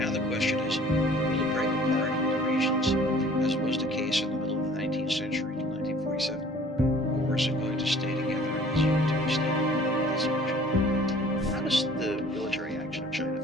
the question is, will it break apart into regions, as was the case in the middle of the 19th century till 1947? Or is it going to stay together as a unitary state? That's the question. How does the military action of China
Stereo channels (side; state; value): both; normal; correlation 0.51